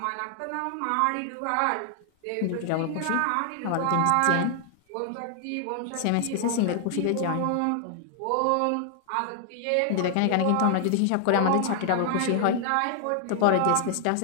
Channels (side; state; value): both; different; correlation 0.00